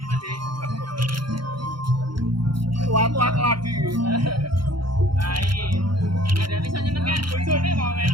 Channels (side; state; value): left; late; 0.73 ms